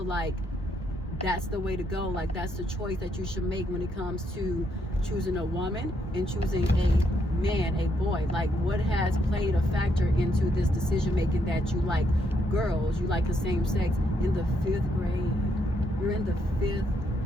like that's the way to go? Like, that's the choice that you should make when it comes to choosing a woman and choosing a man, a boy. Like, what has played a factor into this decision making that you like girls, you like the same sex in the 5th grade? You're in the 5th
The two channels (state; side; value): normal; both; correlation 0.75